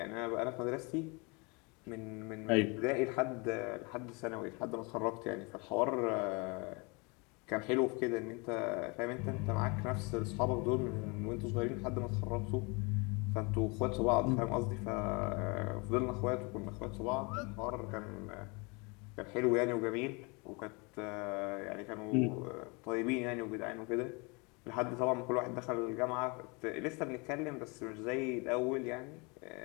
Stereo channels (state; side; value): quieter; right; 29.7 dB